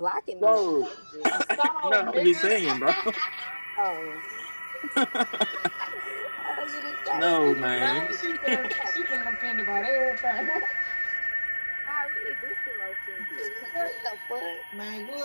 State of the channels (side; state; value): both; inverted; correlation -1.00